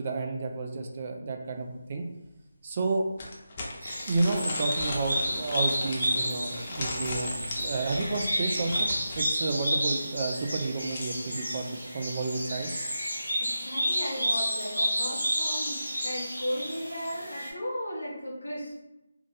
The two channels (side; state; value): both; inverted; correlation -0.88